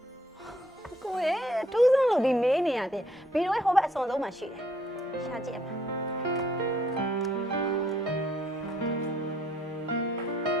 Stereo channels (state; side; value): normal; both; correlation 0.66